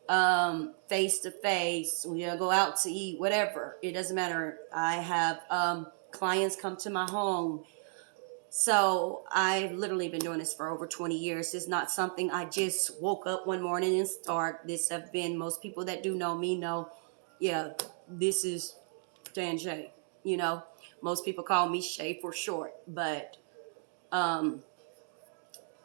face to face, we go out to eat, whatever. It doesn't matter. I have clients come to my home. So I've literally been doing this for over 20 years. It's not something I just woke up one morning and start. This have been, most people that do know me know, yeah, this is Dan Shay. You know, most people call me Shay for short. But now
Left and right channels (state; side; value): silent; left; 55 dB below the other